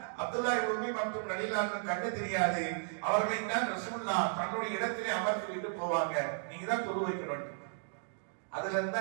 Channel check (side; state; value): left; silent; digital silence